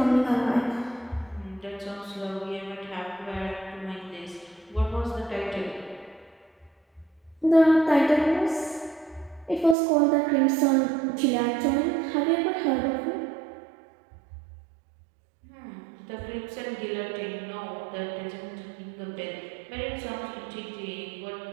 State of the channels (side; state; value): left; drops out; at 9.8 s